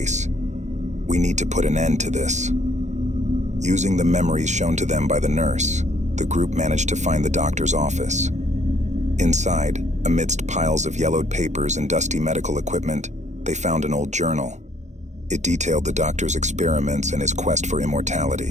"We need to put an end to this." Using the memories shown to them by the nurse, the group managed to find the doctor's office. Inside, amidst piles of yellowed papers and dusty medical equipment, they found an old journal. It detailed the doctor's experiments and his quest for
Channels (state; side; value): late; left; 0.34 ms